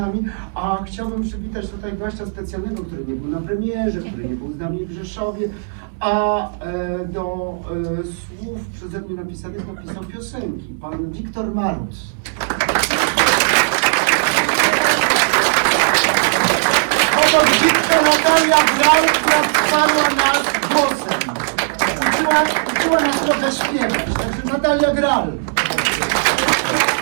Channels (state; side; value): silent; left; digital silence